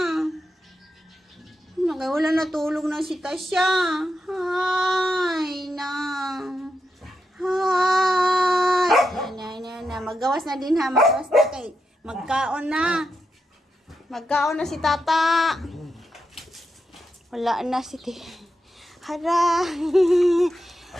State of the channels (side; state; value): both; normal; correlation 0.86